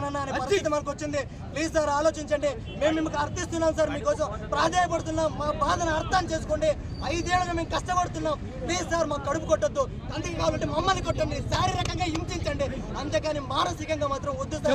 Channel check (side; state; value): both; identical; correlation 1.00